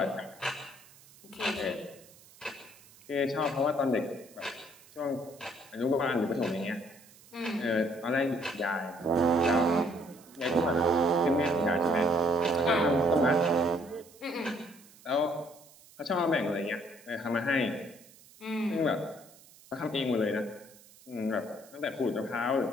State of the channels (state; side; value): noise; right; hiss, 24 dB below the sound